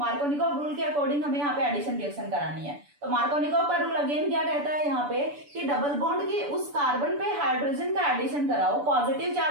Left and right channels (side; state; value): left; late; 6.9 ms